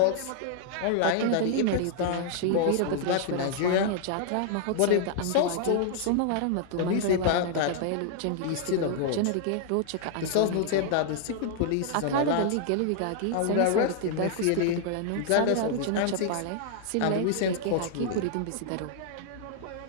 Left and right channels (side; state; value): both; different; correlation -0.01